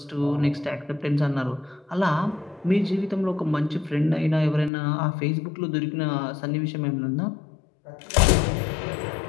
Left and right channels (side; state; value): right; drops out; at 4.7 s